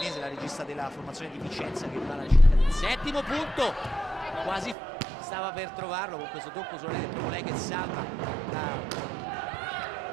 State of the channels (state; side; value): drops out; left; at 4.8 s